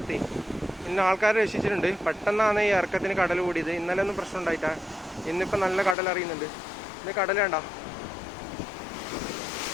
ഇന്ന് ആൾക്കാർ രക്ഷിച്ചിട്ടുണ്ട്. പെട്ടെന്നാണ് ഈ ഇറക്കത്തിന് കടൽ കൂടിയത്. ഇന്നലെ ഒന്നും പ്രശ്നം ഉണ്ടായിട്ടാ. ഇന്നിപ്പോൾ നല്ല കടൽ അറിയുന്നുണ്ട്. ഇന്ന് കടൽ വേണ്ട.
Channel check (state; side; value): drops out; right; at 6.0 s